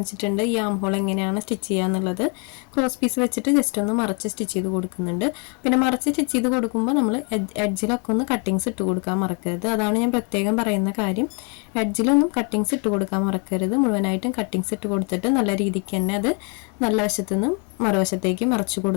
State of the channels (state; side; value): quieter; right; 34.9 dB